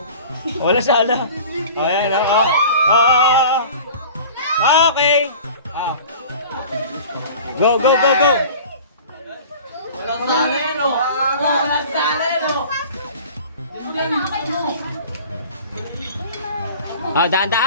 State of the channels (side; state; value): both; inverted; correlation -0.42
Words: Wala sala. Ayan, oo. Okay. Go. Walang sala yan, oh.